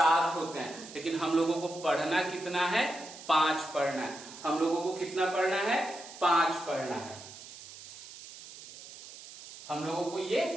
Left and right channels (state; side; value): noise; right; hiss, 15 dB below the sound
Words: होते हैं। लेकिन हम लोगों को पढ़ना कितना है? 5 पढ़ना है। हम लोगों को कितना पढ़ना है? 5 पढ़ना है। हम लोगों को ये